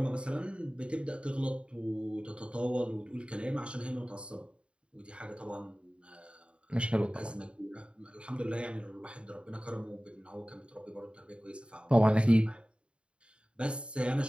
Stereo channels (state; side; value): late; left; 0.056 ms